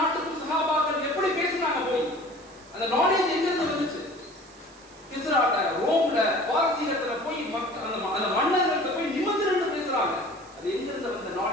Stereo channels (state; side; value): noise; right; hiss, 25 dB below the sound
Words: சஹாபாக்கள் எப்படி பேசினாங்க போய், அந்த நாலேஜ் எங்க இருந்து வந்துச்சு? கிஸ்ராட்ட, ரோம்ல, பாரசீகத்துல போய் அந்த மன்னர்கள்ட்ட போய் நிமிர்ந்து பேசுறாங்க. அது எங்க இருந்து வந்த